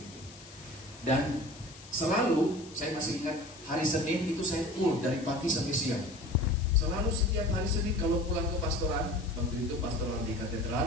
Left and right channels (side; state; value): left; noise; hiss, 19 dB below the sound